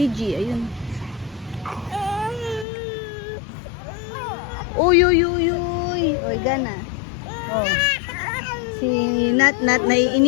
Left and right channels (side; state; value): right; drops out; at 2.7 s